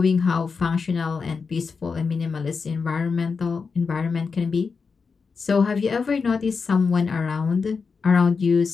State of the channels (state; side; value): quieter; right; 5.1 dB